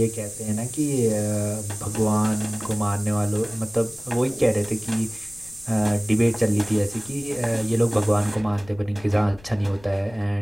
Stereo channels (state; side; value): noise; left; rumble, 23 dB below the sound